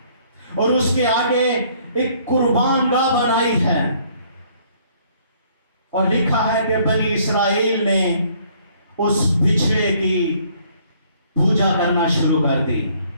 और उसके आगे एक कुर्बान गाह बनाई है। और लिखा है कि बनी इसराइल ने उस बिछड़े की पूजा करना शुरू कर दी।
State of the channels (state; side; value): inverted; both; correlation -0.62